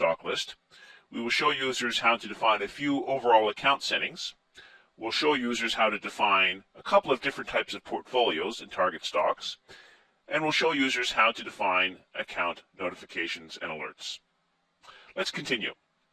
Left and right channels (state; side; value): identical; both; correlation 1.00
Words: list. We will show users how to define a few overall account settings. We'll show users how to define a couple of different types of portfolios and target stocks. And we'll show users how to define account notifications and alerts. Let's continue.